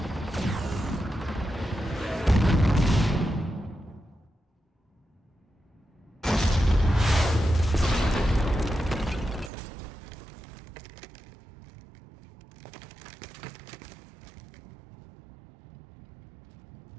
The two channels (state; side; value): drops out; left; at 9.5 s